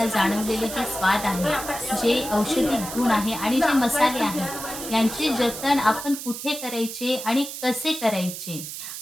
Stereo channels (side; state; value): right; noise; hiss, 9 dB below the sound